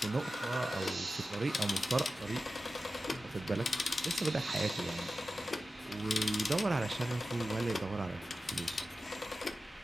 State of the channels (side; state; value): both; normal; correlation 0.93